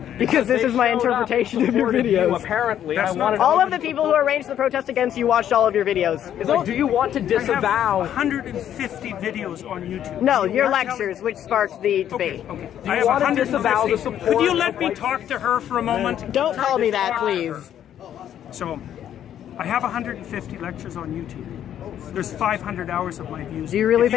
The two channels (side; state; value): right; quieter; 10.4 dB